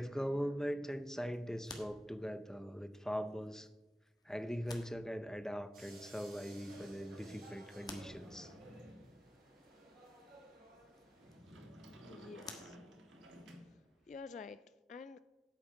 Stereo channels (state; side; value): normal; both; correlation 0.93